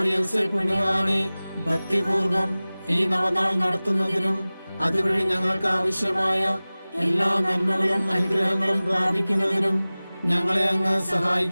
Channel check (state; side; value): inverted; both; correlation -0.99